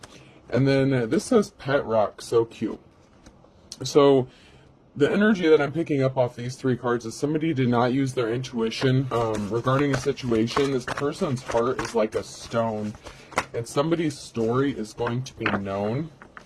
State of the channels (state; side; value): identical; both; correlation 1.00